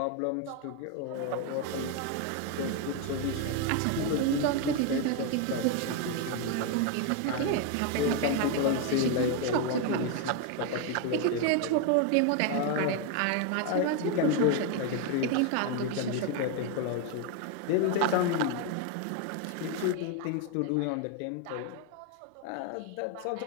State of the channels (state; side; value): different; both; correlation 0.01